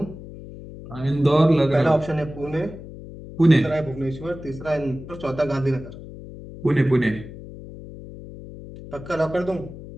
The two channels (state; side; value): noise; left; hum, 14 dB below the sound